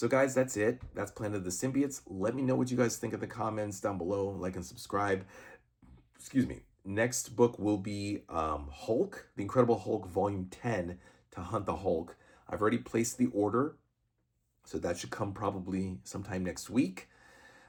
guys, that's it. That's Planet of the Symbiotes. Let me know what you guys think in the comments down below. Like and subscribe. Excuse me. Next book will be Hulk, The Incredible Hulk, Volume 10, To Hunt the Hulk. I've already placed the order, so that should come probably sometime next week.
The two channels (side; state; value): both; identical; correlation 1.00